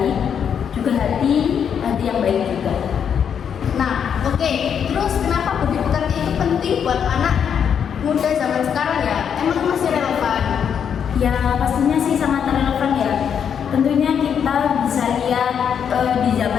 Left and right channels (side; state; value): right; quieter; 7.8 dB